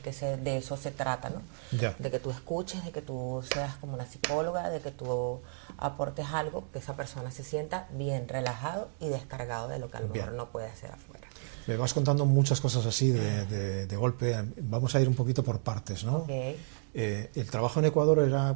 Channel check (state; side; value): silent; left; digital silence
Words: que de eso se trata, ¿no? Ya. De que tú escuches, de que tú seas como una psicóloga, de que tú aportes algo, que esa persona se sienta bien relajado y descargado de lo que a lo mejor no puede hacer afuera. Me vas contando muchas cosas así de golpe. Vamos a ir un poquito por partes, ¿no? Okay. ¿El trabajo en Ecuador